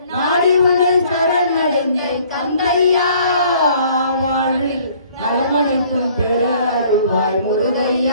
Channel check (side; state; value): both; inverted; correlation -0.57